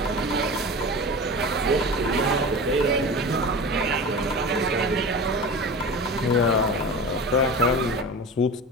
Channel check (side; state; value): both; normal; correlation 0.32